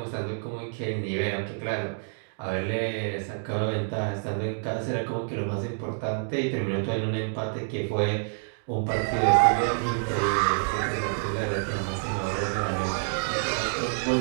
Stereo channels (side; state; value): left; silent; digital silence